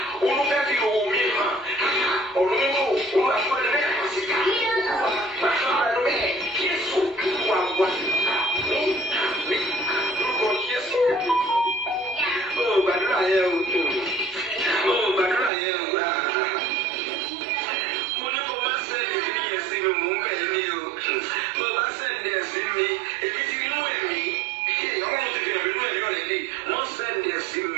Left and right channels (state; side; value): drops out; left; at 15.5 s